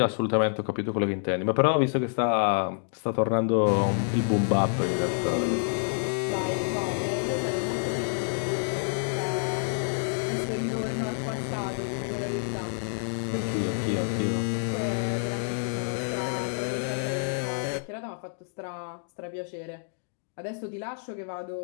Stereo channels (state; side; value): silent; right; digital silence